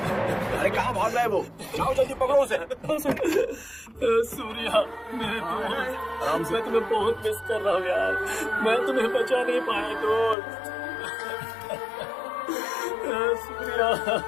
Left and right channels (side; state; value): right; drops out; at 10.4 s